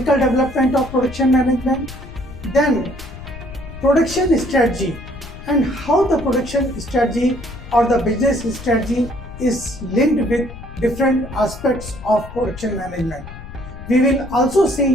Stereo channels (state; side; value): noise; left; rumble, 14 dB below the sound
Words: development of production management, then production strategy and how the production strategy or the business strategy is linked with different aspects of production management. We will also